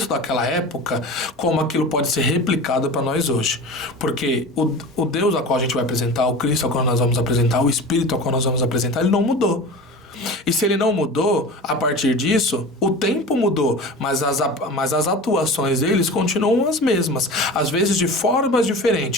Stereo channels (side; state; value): both; normal; correlation 0.34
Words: daquela época, como aquilo pode ser replicado para nós hoje. Porque o Deus a qual a gente vai apresentar, o Cristo a qual nós vamos apresentar, o Espírito a qual nós vamos apresentar, ele não mudou. E se ele não mudou, a partir disso, o tempo mudou, mas as atuações deles continuam as mesmas, às vezes de formas